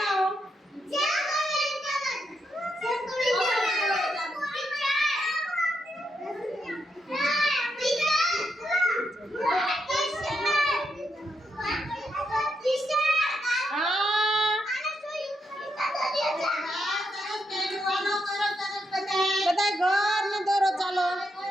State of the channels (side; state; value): both; normal; correlation 0.82